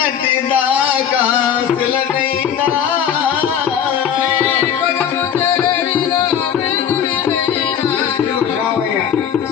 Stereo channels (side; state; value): right; quieter; 8.6 dB